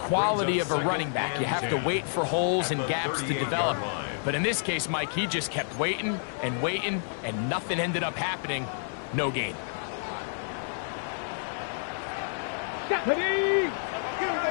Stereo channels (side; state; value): right; silent; 56 dB below the other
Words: of a running back. You have to wait for holes and gaps to develop. But in this case, Mike, he just kept waiting, and nothing ended up happening. No gain.